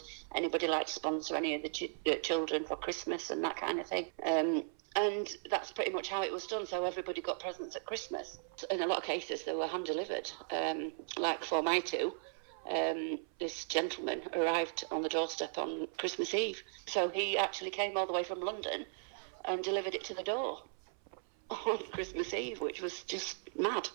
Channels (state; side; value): silent; left; 53 dB below the other